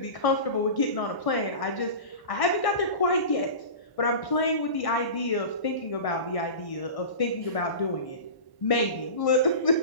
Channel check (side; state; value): right; late; 1.0 ms